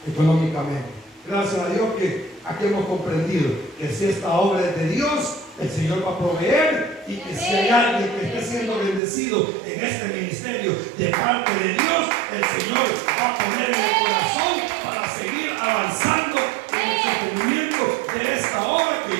económicamente, gracias a Dios que aquí hemos comprendido que si esta obra es de Dios, el Señor va a proveer, y que si hay alguien que esté siendo bendecido en este ministerio de parte de Dios, el Señor va a poner en el corazón para seguir avanzando en el sostenimiento de esta obra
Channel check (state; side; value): drops out; left; at 9.0 s